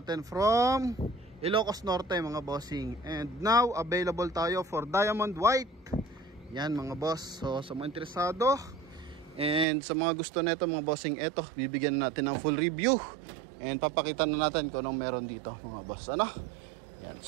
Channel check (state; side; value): drops out; left; at 9.7 s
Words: from Ilocos Norte mga bossing. And now available tayo for diamond white. Yan mga boss. So sa mga interesado and sa mga gusto nito mga bossing, eto bibigyan natin ng full review and papakita na natin kung anong meron dito mga boss. Ano? Yan.